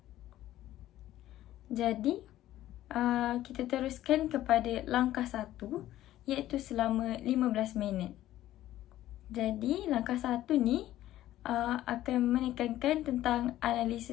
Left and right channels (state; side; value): quieter; right; 13.9 dB